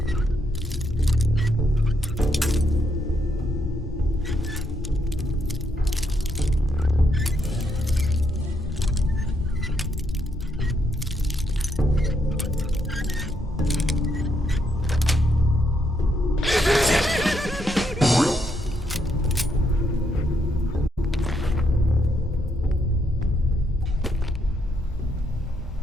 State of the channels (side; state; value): both; normal; correlation 0.76